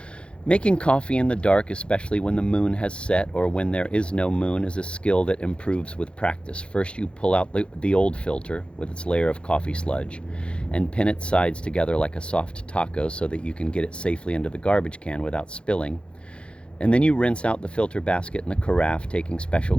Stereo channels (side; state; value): right; late; 0.057 ms